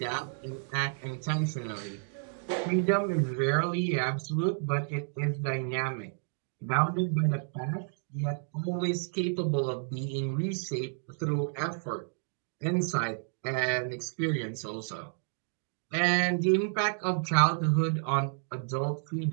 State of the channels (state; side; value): silent; left; digital silence